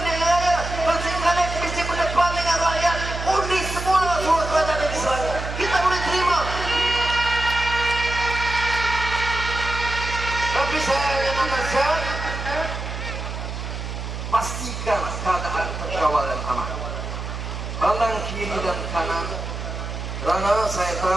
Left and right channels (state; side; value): noise; right; hum, 6 dB below the sound